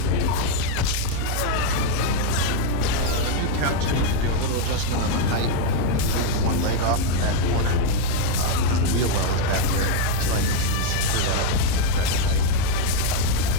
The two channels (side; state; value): both; different; correlation 0.01